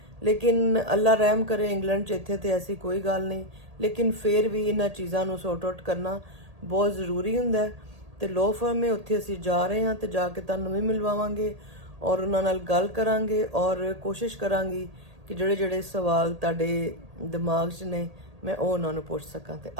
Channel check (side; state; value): left; late; 1.8 ms